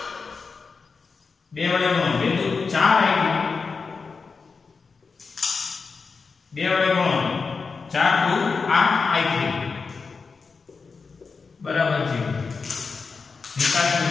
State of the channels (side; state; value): right; quieter; 4.8 dB